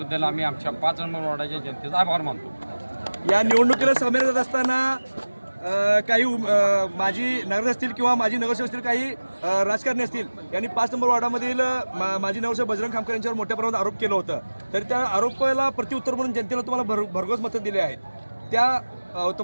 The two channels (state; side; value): inverted; both; correlation -1.00